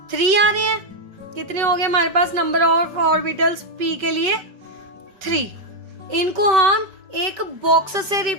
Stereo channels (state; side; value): late; left; 5.3 ms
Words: आ रहे हैं। कितने हो गए हमारे पास नंबर ऑफ ऑर्बिटल्स p के लिए? 3। इनको हम एक बॉक्स से